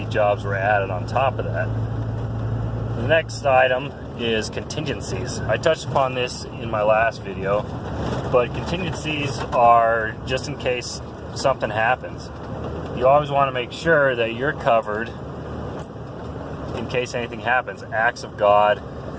jobs were added on top of that. The next item is contingencies. I touched upon this in my last video, but contingencies are just in case something happens. You always want to make sure that you're covered in case anything happens. Acts of God,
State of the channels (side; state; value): both; identical; correlation 1.00